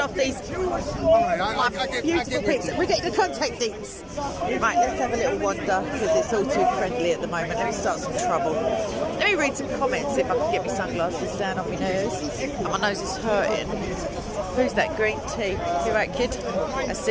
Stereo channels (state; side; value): identical; both; correlation 1.00